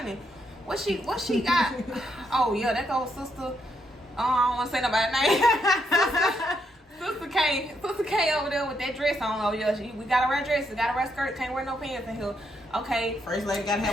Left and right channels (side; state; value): both; normal; correlation 0.77